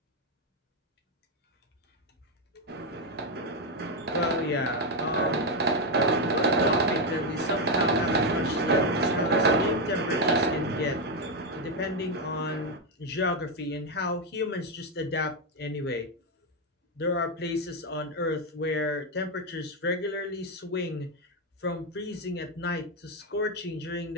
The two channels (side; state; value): both; normal; correlation 0.05